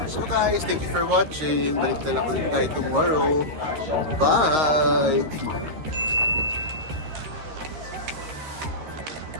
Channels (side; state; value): left; late; 13 ms